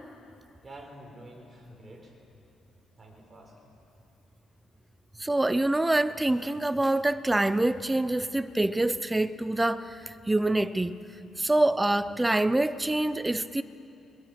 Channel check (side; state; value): both; normal; correlation 0.98